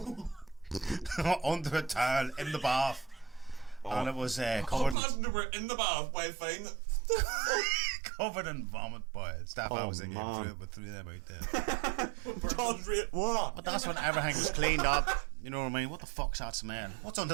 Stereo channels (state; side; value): drops out; left; at 5.0 s